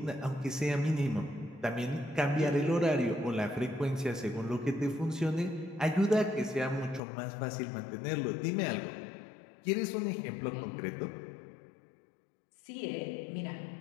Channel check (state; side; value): drops out; right; at 7.0 s